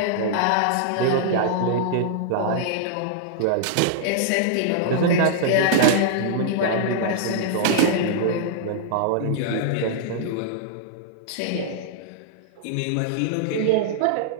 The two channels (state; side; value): different; both; correlation -0.01